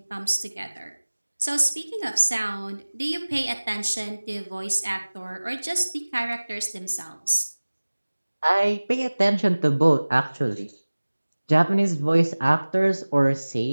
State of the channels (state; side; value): inverted; both; correlation -1.00